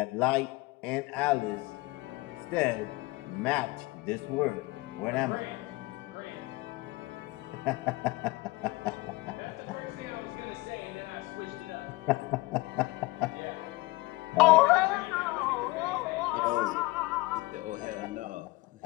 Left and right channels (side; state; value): right; quieter; 21.8 dB